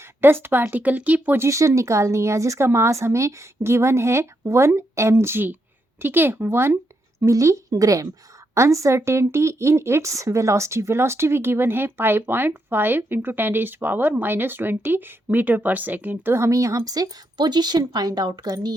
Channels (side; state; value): both; normal; correlation 0.81